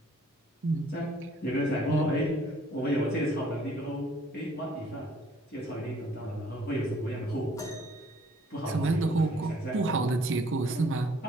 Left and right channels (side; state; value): both; normal; correlation 0.60